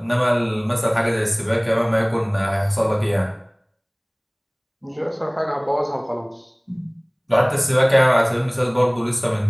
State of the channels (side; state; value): both; identical; correlation 1.00